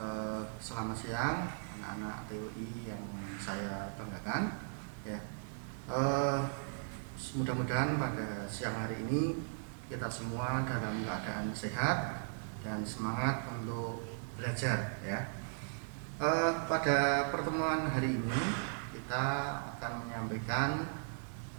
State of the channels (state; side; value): silent; left; digital silence